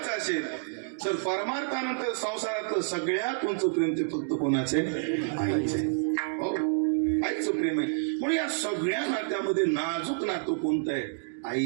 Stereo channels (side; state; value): left; silent; digital silence